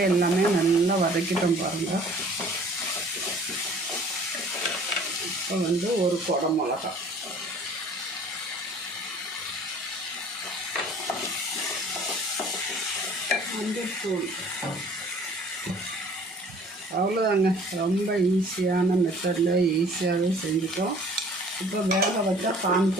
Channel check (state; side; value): normal; both; correlation 0.52